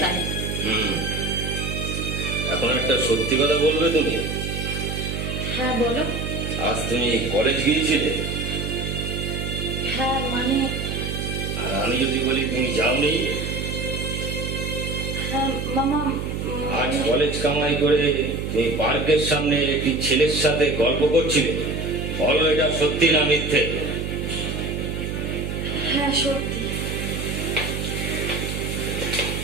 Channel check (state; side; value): noise; right; hum, 3 dB below the sound